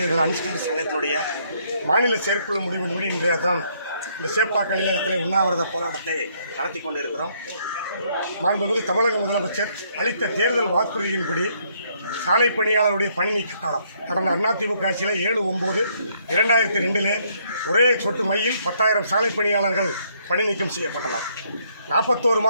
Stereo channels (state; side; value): inverted; both; correlation -0.69